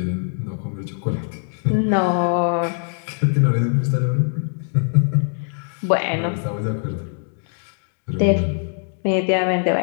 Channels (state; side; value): silent; right; 60 dB below the other